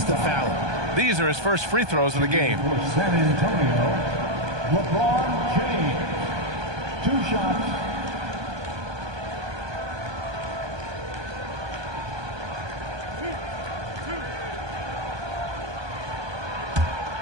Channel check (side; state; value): left; late; 1.2 ms